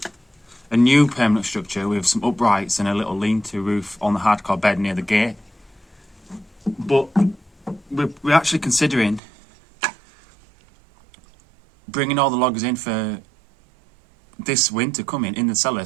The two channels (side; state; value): left; drops out; at 9.2 s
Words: a new permanent structure with some uprights and a little lean-to roof on the hardcore bed near the gate. But we're actually considering bringing all the logs in for this winter coming in the cellar